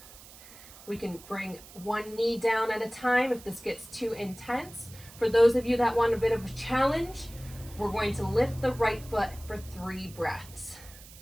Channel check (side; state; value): right; noise; hiss, 19 dB below the sound